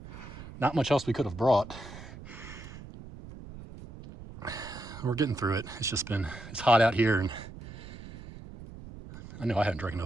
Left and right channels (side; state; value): right; noise; rumble, 14 dB below the sound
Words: much else we could have brought. We're getting through it. It's hot out here, and I know I haven't drank